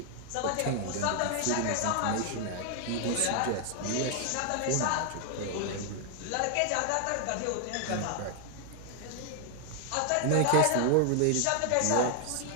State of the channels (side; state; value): both; different; correlation 0.00